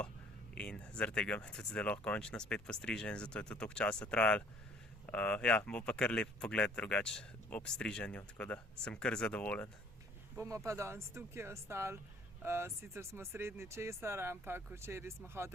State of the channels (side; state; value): both; normal; correlation 0.56